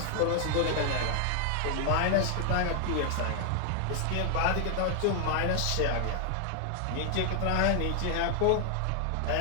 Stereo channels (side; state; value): both; different; correlation 0.00